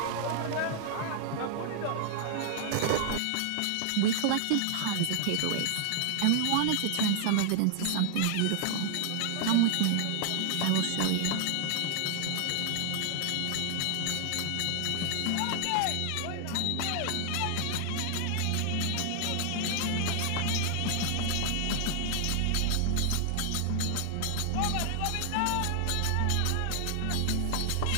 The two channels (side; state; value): both; different; correlation 0.00